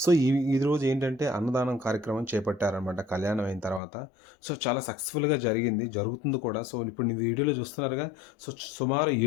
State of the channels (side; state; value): right; drops out; at 3.8 s